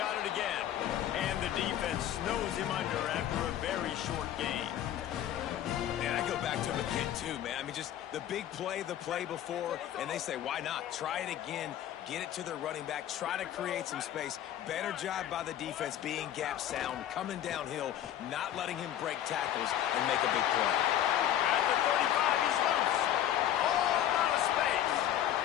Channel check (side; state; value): right; quieter; 11.4 dB